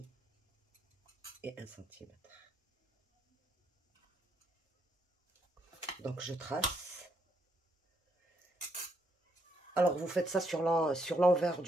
et 1 cm. Donc je trace. Alors vous faites ça sur l'envers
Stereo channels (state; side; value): normal; both; correlation 0.75